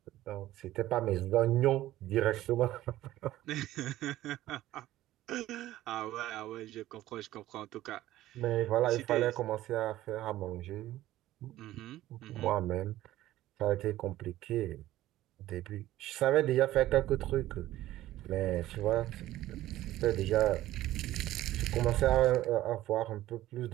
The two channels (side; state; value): left; quieter; 14.9 dB